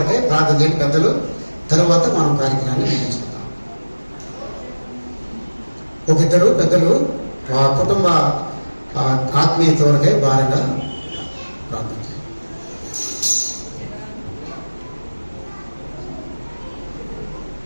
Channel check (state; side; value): inverted; both; correlation -1.00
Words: ప్రార్థన చేయండి పెద్దలు. తరువాత మనం కార్యక్రమాన్ని ముగించుకుందాం. ఒక ఇద్దరు పెద్దలు ఆ కుటుంబ ఆత్మీయత వరకే భారంగా ప్రార్థన చేయండి.